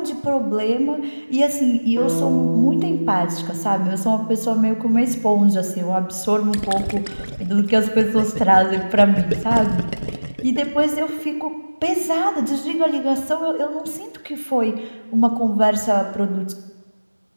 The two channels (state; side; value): inverted; both; correlation -1.00